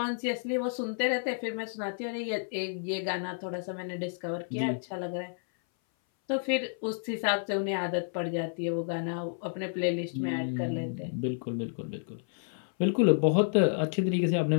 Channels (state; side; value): silent; right; 57 dB below the other